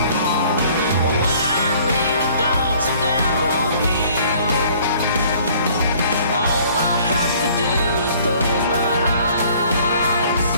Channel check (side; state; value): both; inverted; correlation -0.56